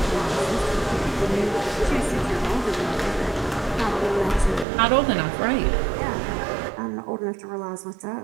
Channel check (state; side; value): drops out; left; at 4.7 s